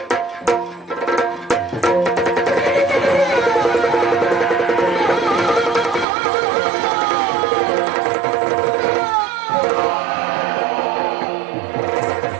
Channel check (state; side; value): drops out; left; at 6.1 s